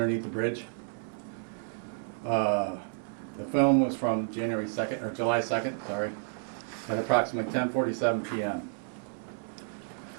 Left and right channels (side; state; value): left; silent; digital silence